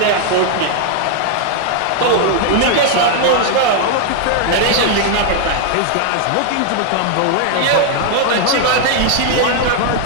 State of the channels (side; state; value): both; different; correlation 0.00